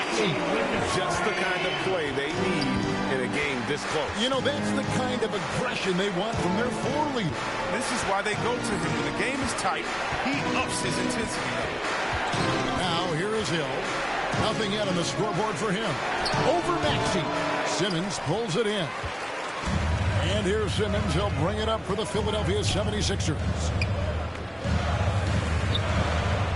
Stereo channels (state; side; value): identical; both; correlation 1.00